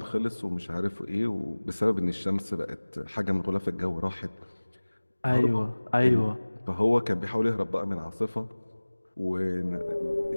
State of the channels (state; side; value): inverted; both; correlation -1.00